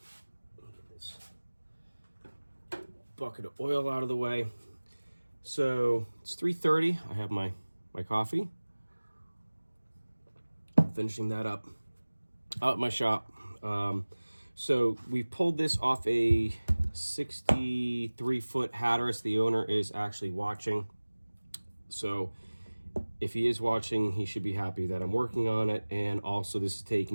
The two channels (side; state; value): both; inverted; correlation -1.00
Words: Get this bucket of oil out of the way. So it's 3:30. I have my coffee. Finishing that up out at my shop. So we pulled this off a 63-foot Hatteras. The owner is actually watching. So if he is watching, he should be happy that I'm working on it. And also this is